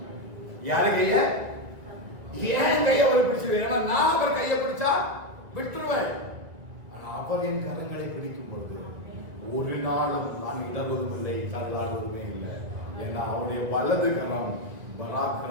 யாரு கைய? ஏன் கையை அவர் பிடிச்சு? ஏன்னா நான் அவர் கையை பிடிச்சா விட்டுருவேன். ஆனா அவர் என் கரங்களை பிடிக்கும் பொழுது ஒரு நாளும் நான் இடர்வதும் இல்லை, தள்ளாடுவதுமே இல்லை. ஏன்னா அவருடைய வலது கரம்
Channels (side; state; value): left; late; 2.0 ms